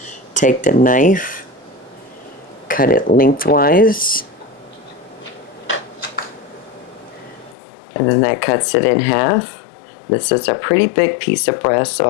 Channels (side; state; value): right; drops out; at 7.6 s